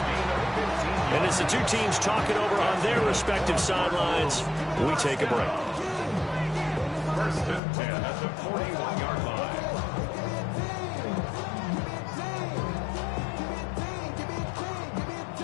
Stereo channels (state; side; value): drops out; right; at 7.6 s